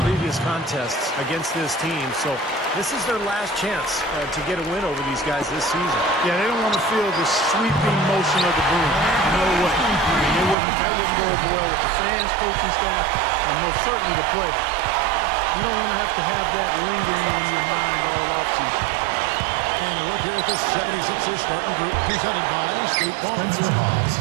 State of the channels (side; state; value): left; drops out; at 10.6 s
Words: previous contests against this team, so this is their last chance to get a win over these guys this season. Yeah, they don't want to feel the sweeping motion of the broom. No way. That wouldn't go over well with the fans, coaching staff, and most certainly the players. You don't want to have that lingering on your mind all offseason. And a look here at the 76ers starting group presented by State Farm. Spencer Hawes.